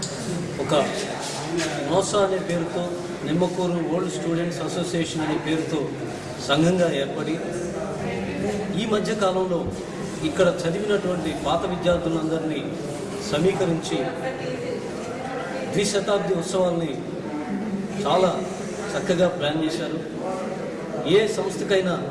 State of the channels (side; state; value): both; identical; correlation 1.00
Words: ఒక నోసా అనే పేరుతో నిమ్మకూరు ఓల్డ్ స్టూడెంట్స్ అసోసియేషన్ అనే పేరుతో సంఘంగా ఏర్పడి ఈ మధ్య కాలంలో ఇక్కడ చదివినటువంటి పాత విద్యార్థులందరినీ సమీకరించి ద్విశతాబ్ది ఉత్సవాల్ని చాలా చక్కగా ప్లాన్ చేశారు. ఏ సంస్థకైనా